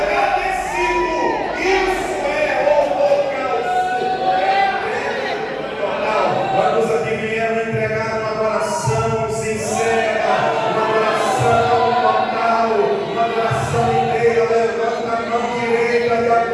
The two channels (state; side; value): identical; both; correlation 1.00